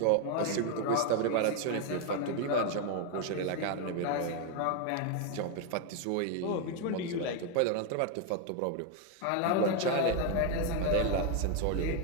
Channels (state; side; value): different; both; correlation 0.01